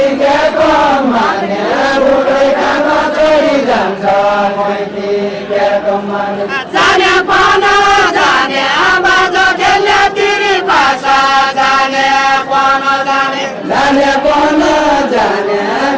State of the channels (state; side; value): identical; both; correlation 1.00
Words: माने उड्दै जानु तोरी जान्छ देखेको माने जाने पन जाने बाजो खेल्ने तिरी भाषा जाने पन जाने जाने पन जाने